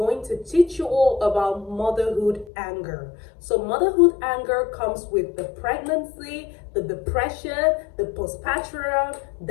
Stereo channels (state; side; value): drops out; right; at 2.5 s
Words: to teach you all about motherhood anger. So motherhood anger comes with the pregnancy, the depression, the postpartum,